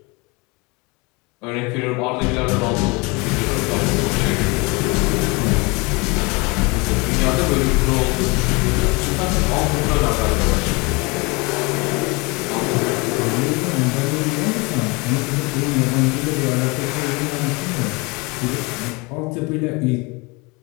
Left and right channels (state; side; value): quieter; right; 27.2 dB